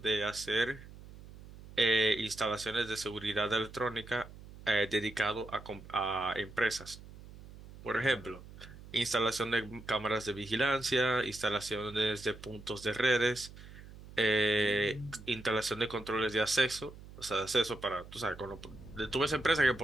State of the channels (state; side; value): noise; right; hum, 17 dB below the sound